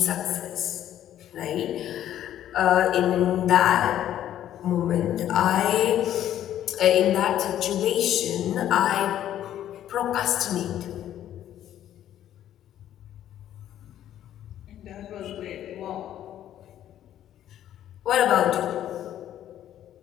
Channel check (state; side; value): quieter; right; 11.5 dB